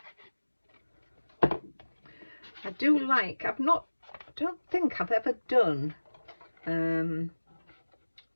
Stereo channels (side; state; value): both; inverted; correlation -1.00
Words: I do like, I don't think I've ever done, oh,